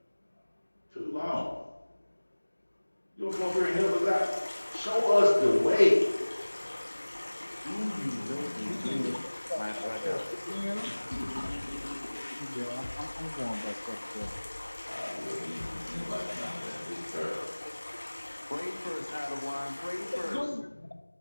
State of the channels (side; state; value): both; inverted; correlation -1.00